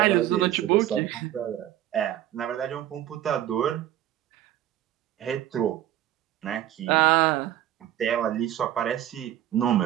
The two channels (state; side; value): quieter; left; 12.6 dB